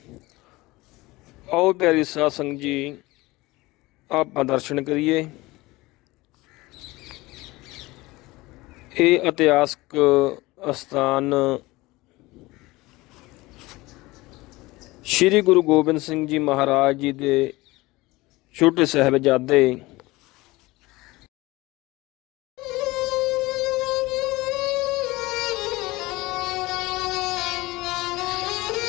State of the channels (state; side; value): quieter; right; 20.7 dB